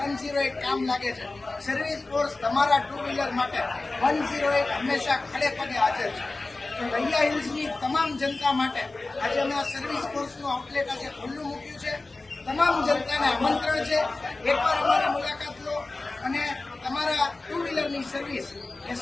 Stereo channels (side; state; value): right; quieter; 3.2 dB